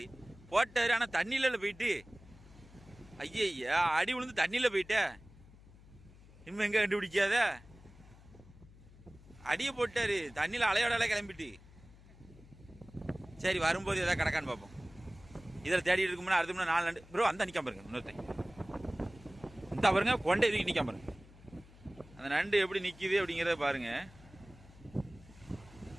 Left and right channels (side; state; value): left; noise; hum, 22 dB below the sound